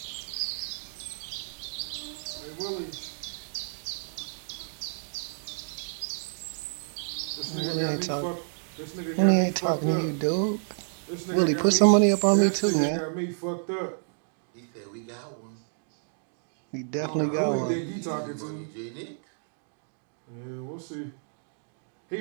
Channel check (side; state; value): left; silent; digital silence